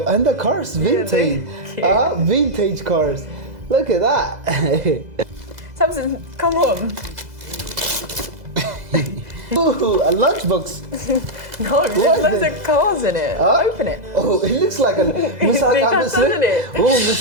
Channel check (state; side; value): late; left; 2.0 ms